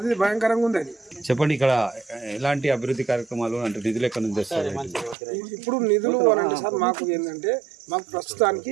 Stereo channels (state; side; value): drops out; left; at 5.2 s